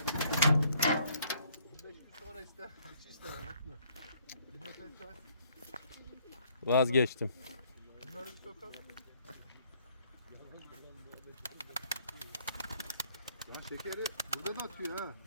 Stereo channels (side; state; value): both; inverted; correlation -0.63